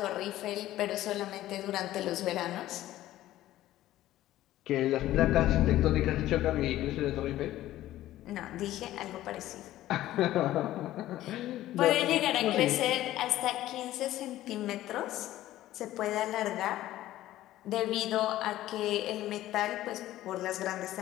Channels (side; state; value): right; quieter; 14.6 dB